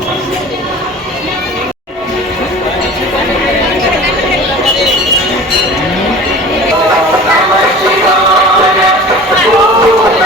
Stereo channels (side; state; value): both; normal; correlation 0.40